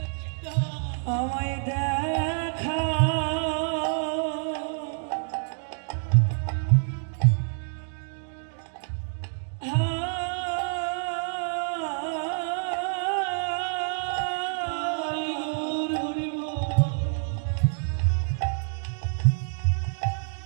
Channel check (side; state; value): left; silent; digital silence